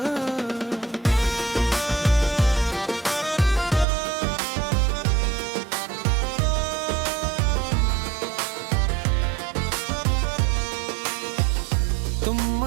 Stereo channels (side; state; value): left; drops out; at 3.9 s